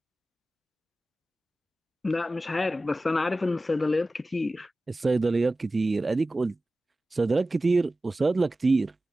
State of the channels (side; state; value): both; normal; correlation 0.95